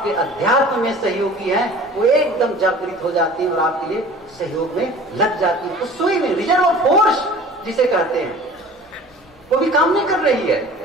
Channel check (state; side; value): normal; both; correlation 0.44